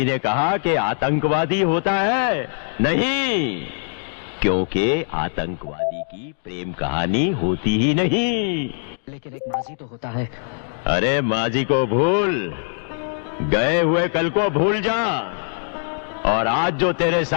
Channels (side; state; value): right; silent; digital silence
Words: ने कहा कि आतंकवादी होता है? नहीं, क्योंकि आतंकवादी की प्रेम कहानी होती ही नहीं। लेकिन एक माजी तो होता है। अरे माजी को भूल, गए हुए कल को भूल जा, और आज जो तेरे